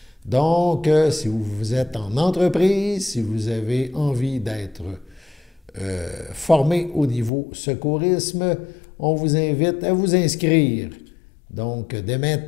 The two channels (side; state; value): right; drops out; at 7.3 s